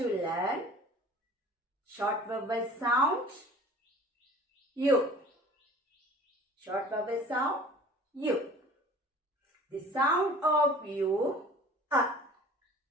learn short vowel sound U. Short vowel sound U. The sound of U,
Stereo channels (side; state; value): both; normal; correlation 0.45